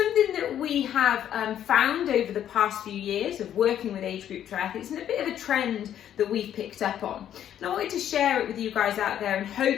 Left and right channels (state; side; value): quieter; right; 10.5 dB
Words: that we have found over the past few years of working with age group triathletes, and a bit of a trend that we've picked up on. And I wanted to share it with you guys out there and